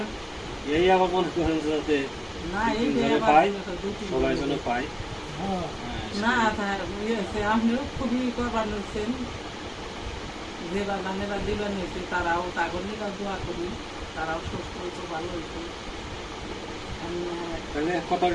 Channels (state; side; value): identical; both; correlation 1.00